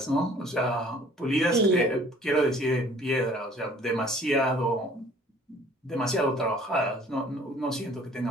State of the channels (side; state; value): both; normal; correlation 0.54